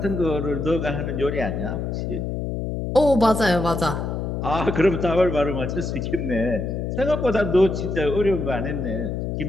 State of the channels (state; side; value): noise; left; hum, 3 dB below the sound